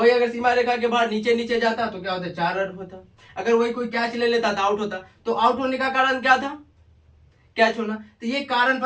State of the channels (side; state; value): both; identical; correlation 1.00